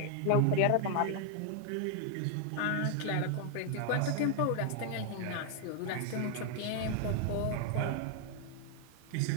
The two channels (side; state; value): both; different; correlation 0.00